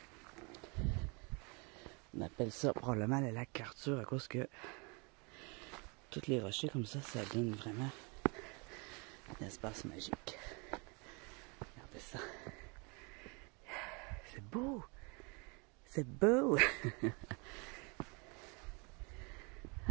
On appelle ça probablement le lac Arthur à cause que tous les rochers comme ça donne vraiment un espace magique. Regardez ça. C'est beau! C'est beau!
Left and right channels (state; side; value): quieter; left; 31.4 dB